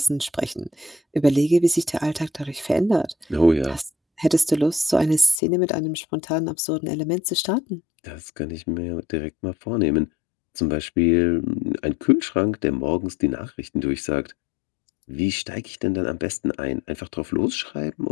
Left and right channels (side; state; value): right; drops out; at 5.4 s